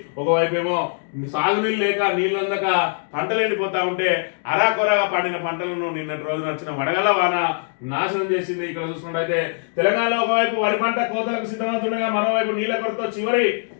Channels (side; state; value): right; silent; 63 dB below the other